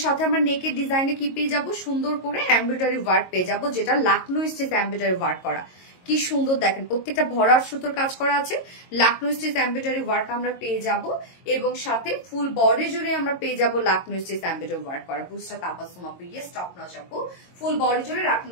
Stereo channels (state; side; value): late; right; 22 ms